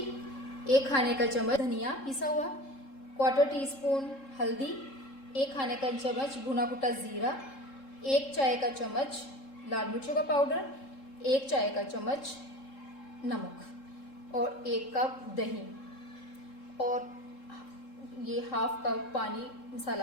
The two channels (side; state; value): right; late; 3.7 ms